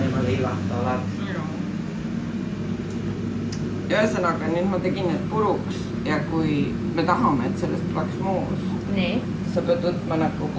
ilma leivata oled. Ja ühesõnaga, nüüd ma tegin need puruks ja kui me tahame, et sellest tuleks moos, sa pead võtma nagu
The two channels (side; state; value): both; identical; correlation 1.00